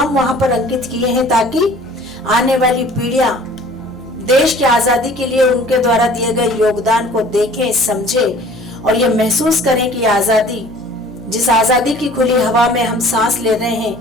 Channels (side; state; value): right; noise; hum, 23 dB below the sound